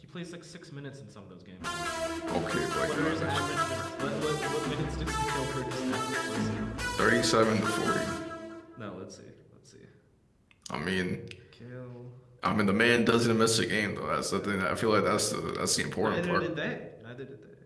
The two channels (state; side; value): identical; both; correlation 1.00